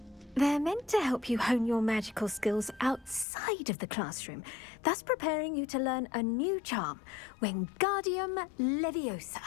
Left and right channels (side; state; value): right; drops out; at 3.2 s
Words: They're meant to help you hone your magical skills outside of the classroom, thus preparing you to learn a new charm, Wingardium